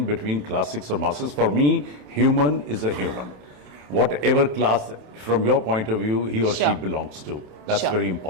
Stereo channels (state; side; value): late; left; 27 ms